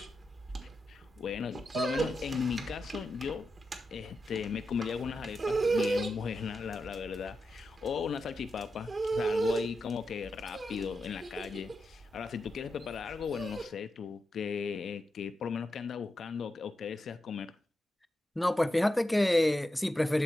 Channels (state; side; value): normal; both; correlation 0.88